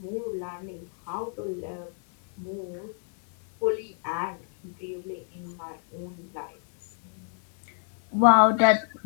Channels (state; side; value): silent; right; digital silence